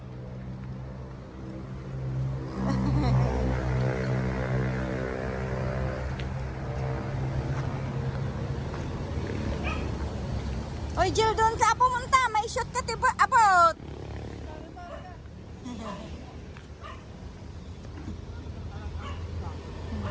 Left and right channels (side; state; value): both; identical; correlation 1.00